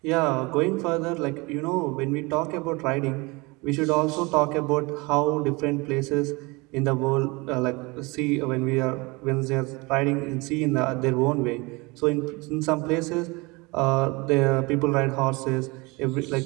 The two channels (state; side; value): quieter; left; 25.5 dB